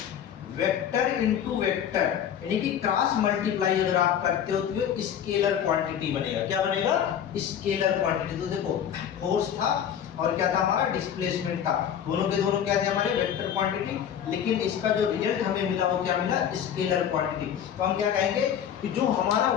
वेक्टर इनटू वेक्टर, यानी कि क्रॉस मल्टीप्लाई अगर आप करते हो तो ये स्केलर क्वांटिटी बनेगा। क्या बनेगा? Scalar quantity. तो देखो फोर्स था और क्या था हमारा? डिस्प्लेसमेंट था। दोनों के दोनों क्या थे? हमारे वेक्टर क्वांटिटी, लेकिन इसका जो रिजल्ट हमें मिला वो क्या मिला? Scalar quantity. तो हम क्या कहेंगे कि जो हमारा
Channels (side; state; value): right; quieter; 9.2 dB